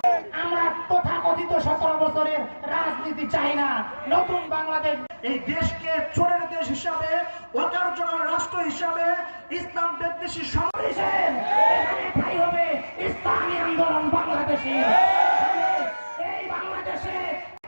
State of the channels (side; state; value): both; inverted; correlation -1.00